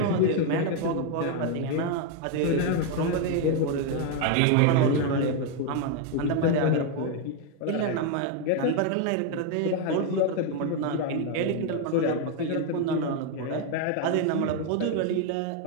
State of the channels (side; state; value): both; different; correlation 0.01